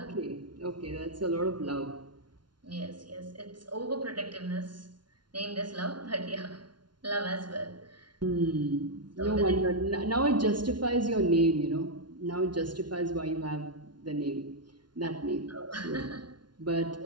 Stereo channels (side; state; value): left; late; 0.70 ms